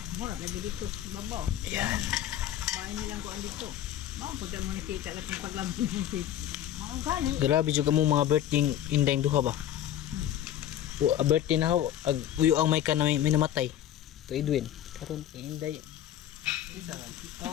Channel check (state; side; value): quieter; right; 11.5 dB